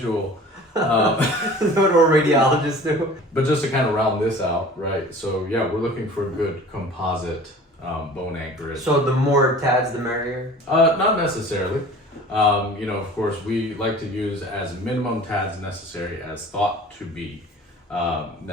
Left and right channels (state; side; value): normal; both; correlation 0.44